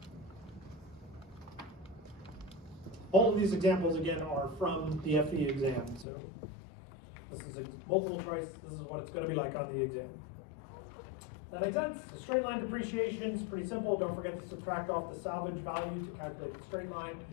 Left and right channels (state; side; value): drops out; right; at 6.1 s